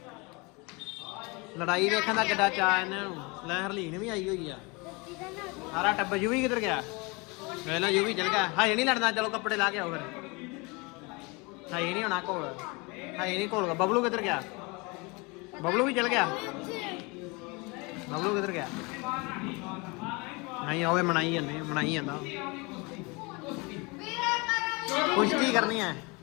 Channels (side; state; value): right; quieter; 27.6 dB